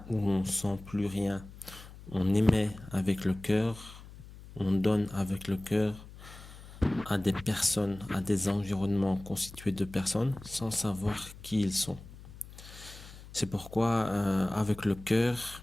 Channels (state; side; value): noise; left; hum, 17 dB below the sound